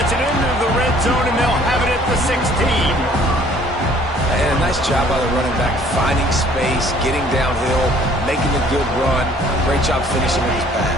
it into the red zone, and they'll have it at the 16. And a nice job by the running back, finding space, getting downhill, making a good run. Great job finishing with his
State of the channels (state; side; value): normal; both; correlation 0.57